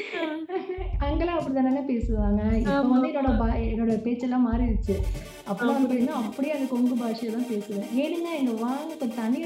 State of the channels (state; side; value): identical; both; correlation 1.00